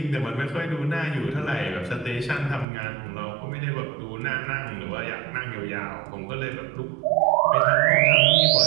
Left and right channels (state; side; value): drops out; left; at 2.7 s